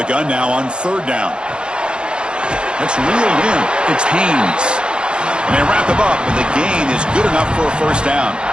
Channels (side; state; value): left; late; 0.052 ms